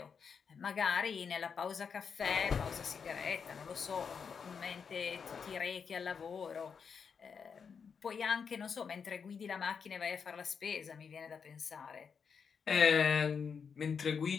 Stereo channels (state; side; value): quieter; right; 6.2 dB